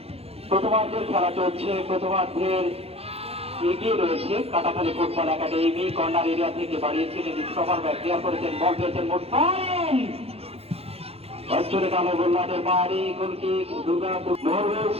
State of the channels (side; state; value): left; late; 0.29 ms